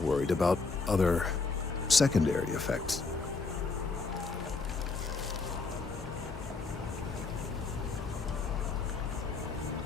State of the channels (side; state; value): right; quieter; 4.1 dB